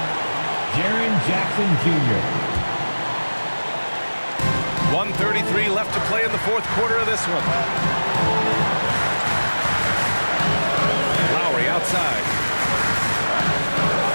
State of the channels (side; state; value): both; inverted; correlation -1.00